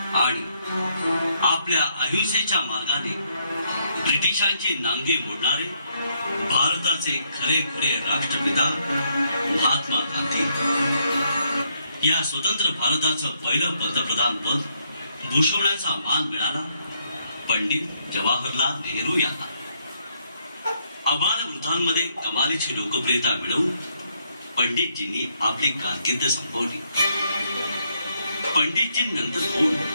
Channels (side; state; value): both; inverted; correlation -0.74